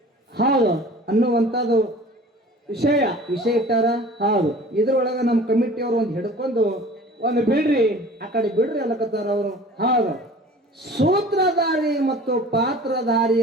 ಹೌದು ಅನ್ನುವಂಥದ್ದು ವಿಷಯ ಇಟ್ಟಾರ. ಹೌದು. ಇದ್ರೊಳಗ ನಮ್ಮ ಕಮಿಟಿಯವರು ಒಂದು ಹಿಡ್ಕೊಂಡು ಒಂದು ಬಿಡ್ರಿ ಆ ಕಡೆ ಬಿಡ್ರಿ ಅಲ್ಲಕತ್ತಾರ ಅವರು. ಹೌದು. ಸೂತ್ರಧಾರಿ ಮತ್ತು ಪಾತ್ರಧಾರಿ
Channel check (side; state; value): both; normal; correlation 0.44